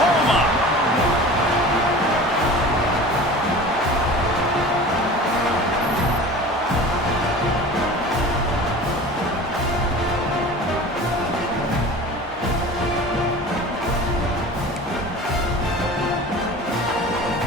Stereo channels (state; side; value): normal; both; correlation 0.38